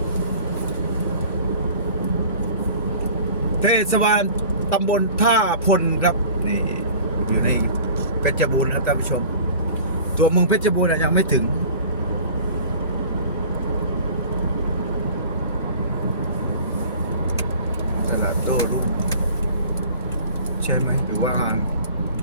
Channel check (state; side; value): inverted; both; correlation -0.44